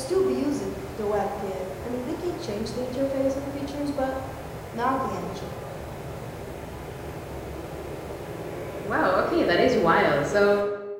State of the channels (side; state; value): both; identical; correlation 1.00